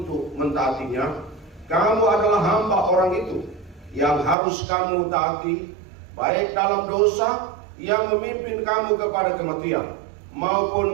mentaatinya, kamu adalah hamba orang itu yang harus kamu taati, baik dalam dosa yang memimpin kamu kepada kematian,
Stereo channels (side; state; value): left; drops out; at 4.4 s